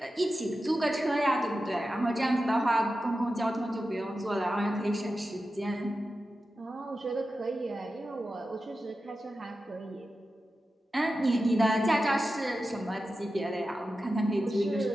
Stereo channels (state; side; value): normal; both; correlation 0.92